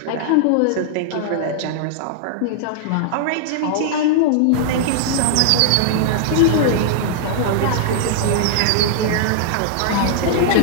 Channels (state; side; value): different; both; correlation -0.01